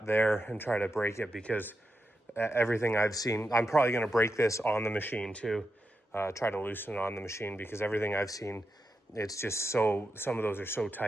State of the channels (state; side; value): normal; both; correlation 0.87